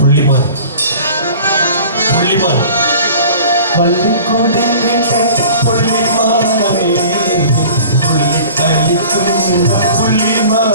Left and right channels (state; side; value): inverted; both; correlation -0.44